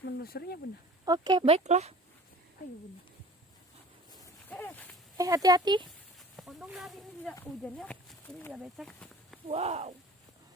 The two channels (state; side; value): normal; both; correlation 0.44